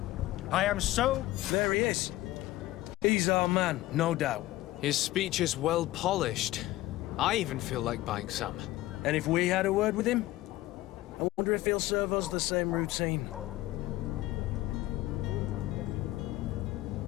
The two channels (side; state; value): right; quieter; 16.9 dB